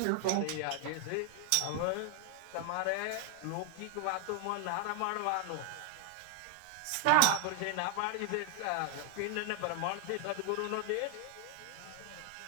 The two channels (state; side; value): different; both; correlation 0.00